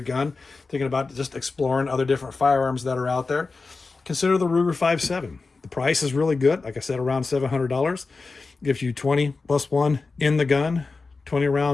gun, thinking about just exploring other different firearms that are out there, consider the Ruger 5.7. The price is really good. Like I said, around $700. Gives you 20 plus 1 in the gun, 20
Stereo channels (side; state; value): right; quieter; 4.1 dB